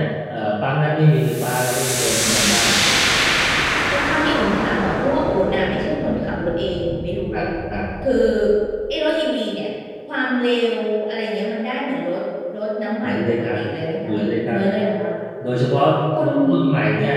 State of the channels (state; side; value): identical; both; correlation 1.00